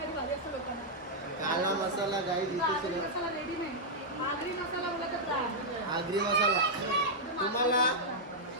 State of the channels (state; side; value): normal; both; correlation -0.05